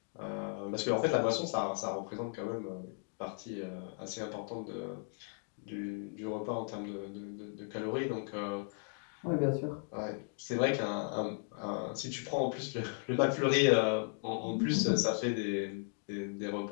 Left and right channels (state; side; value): silent; right; 54 dB below the other